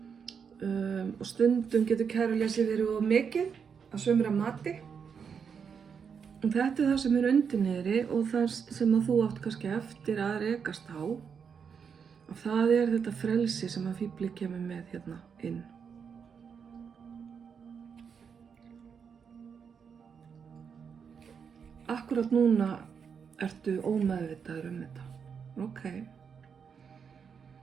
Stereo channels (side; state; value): left; quieter; 6.6 dB